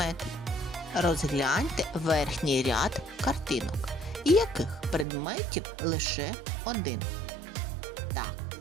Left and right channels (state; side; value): drops out; left; at 5.1 s